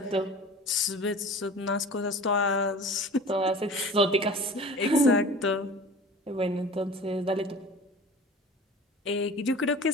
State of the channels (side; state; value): both; normal; correlation 0.40